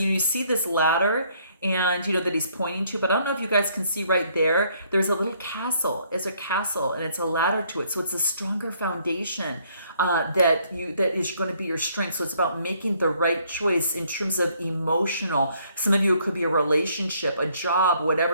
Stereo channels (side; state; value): both; inverted; correlation -0.66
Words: see this ladder and that he's pointing to, but I don't know if you guys can see right there, there's a little castle. It's a castle and it's a ladder to it. So it's a stronger foundation that is going to be your strength. So it's about making the right choice in terms of emotional. Some of you, it could be a relationship, a job,